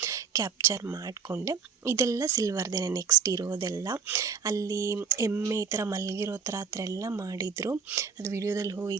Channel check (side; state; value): left; quieter; 6.2 dB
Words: ಕ್ಯಾಪ್ಚರ್ ಮಾಡಿಕೊಂಡೆ. ಇದೆಲ್ಲ ಸಿಲ್ವರ್ದೇ ನೆಕ್ಸ್ಟ್ ಇರೋದೆಲ್ಲ. ಅಲ್ಲಿ ಎಮ್ಮೆ ಈ ಥರ ಮಲಗಿರೋ ಥರ ಆ ಥರ ಎಲ್ಲ ಮಾಡಿದರು. ಅದು ವಿಡಿಯೋದಲ್ಲಿ